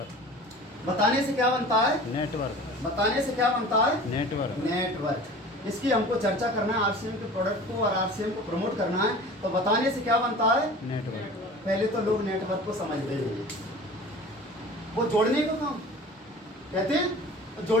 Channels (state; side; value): normal; both; correlation 0.40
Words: बताने से क्या बनता है? नेटवर्क। बताने से क्या बनता है? नेटवर्क। नेटवर्क। इसकी हमको चर्चा करना है, आरसीएम के प्रोडक्ट को और आरसीएम को प्रमोट करना है, तो बताने से क्या बनता है? नेटवर्क। पहले तो लोग नेटवर्क को समझते ही नहीं, वो जोड़ने का काम कहते हैं,